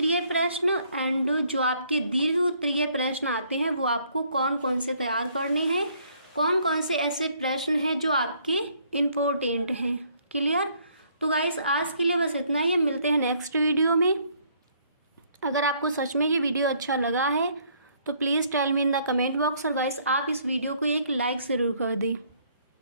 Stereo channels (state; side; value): inverted; both; correlation -0.65